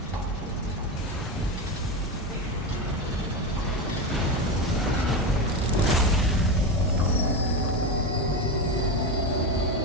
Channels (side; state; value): both; normal; correlation 0.17